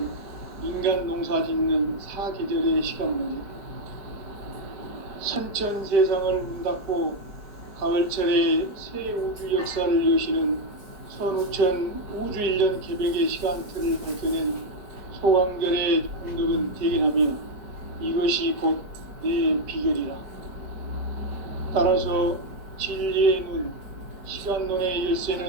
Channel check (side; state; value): left; late; 4.8 ms